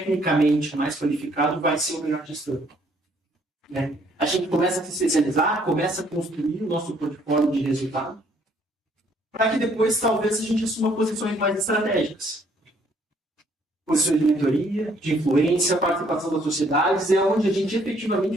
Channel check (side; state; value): both; normal; correlation 0.65